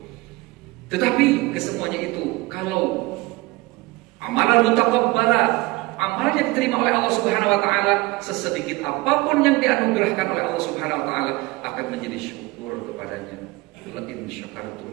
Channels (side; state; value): left; quieter; 21.6 dB